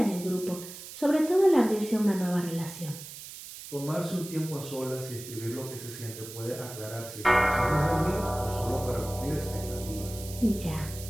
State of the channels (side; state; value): right; noise; hiss, 13 dB below the sound